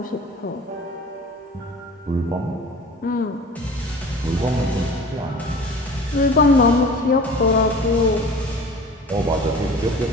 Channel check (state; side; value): normal; both; correlation 0.42